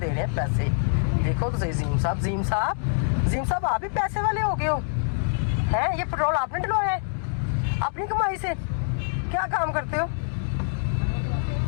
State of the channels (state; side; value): silent; right; digital silence